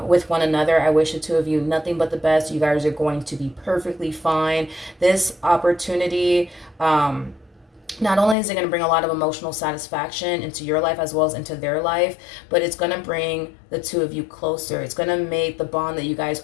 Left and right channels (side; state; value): right; drops out; at 8.3 s